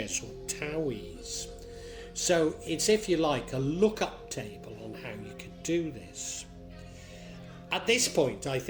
or towies. So it's, if you like, a lookup table on how you can do this. At this point, I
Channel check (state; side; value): identical; both; correlation 1.00